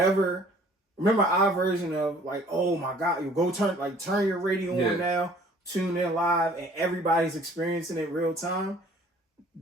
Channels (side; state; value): both; normal; correlation 0.55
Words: Remember our version of, like, oh my God, you go turn your radio on now, tune in live, and everybody's experiencing it real time.